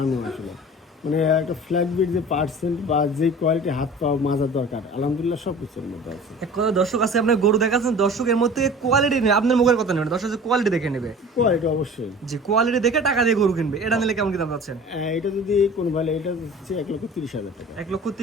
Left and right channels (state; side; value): normal; both; correlation 0.42